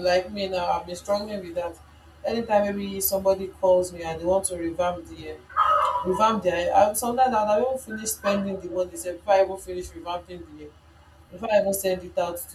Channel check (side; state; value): both; identical; correlation 1.00